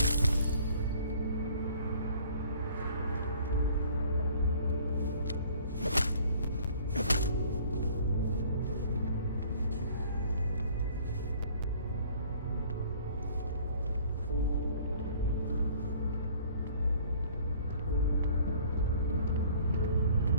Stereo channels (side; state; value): both; inverted; correlation -0.54